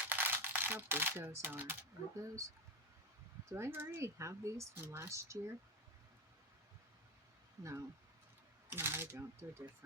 How big those are. Are those? Do I already have these from last year? No. No, I don't. They're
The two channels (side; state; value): both; normal; correlation 0.13